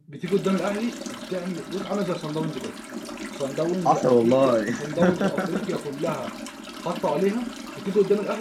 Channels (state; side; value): identical; both; correlation 1.00